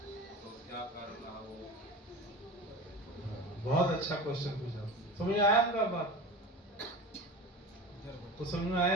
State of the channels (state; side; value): normal; both; correlation 0.32